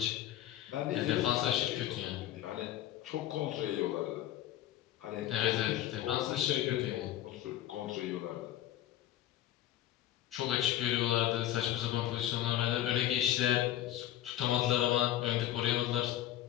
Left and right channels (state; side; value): quieter; right; 12.9 dB